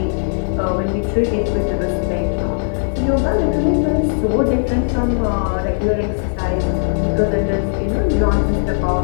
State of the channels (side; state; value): right; silent; 67 dB below the other